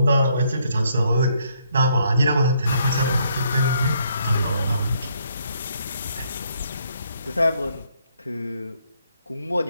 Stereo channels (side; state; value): both; inverted; correlation -0.71